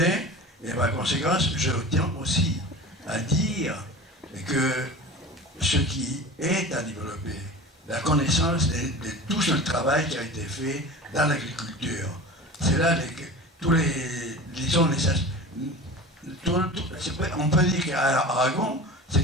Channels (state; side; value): normal; both; correlation 0.35